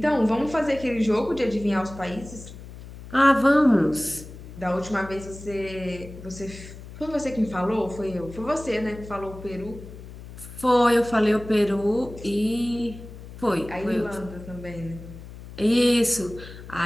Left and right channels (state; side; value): noise; left; hum, 15 dB below the sound